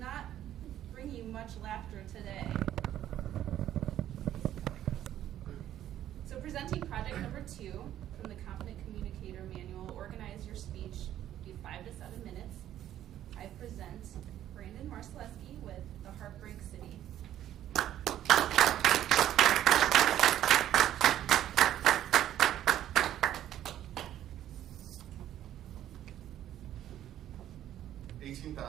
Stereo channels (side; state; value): left; quieter; 11.9 dB